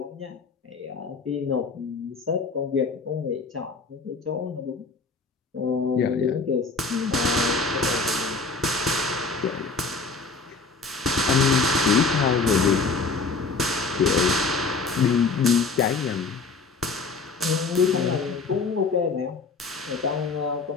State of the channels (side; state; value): right; quieter; 4.2 dB